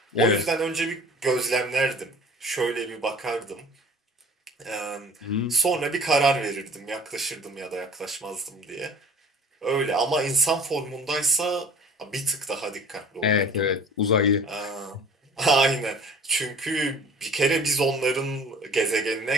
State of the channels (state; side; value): normal; both; correlation 0.47